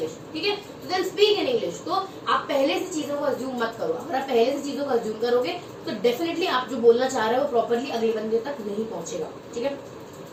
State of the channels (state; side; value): identical; both; correlation 1.00